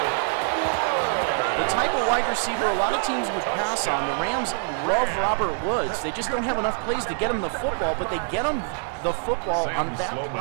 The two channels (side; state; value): left; silent; 60 dB below the other